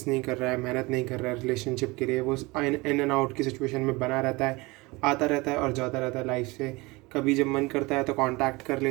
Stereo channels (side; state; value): left; quieter; 23.7 dB